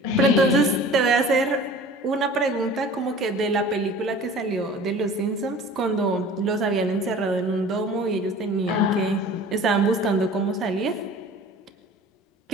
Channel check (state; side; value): normal; both; correlation 0.43